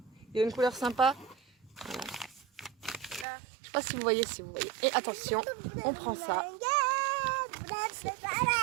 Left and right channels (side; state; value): left; drops out; at 3.2 s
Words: il y a une couleur sympa. Voilà. Là. Je sais pas si vous voyez, Et attention, on prend ça.